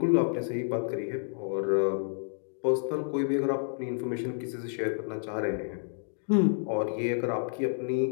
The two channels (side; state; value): right; silent; digital silence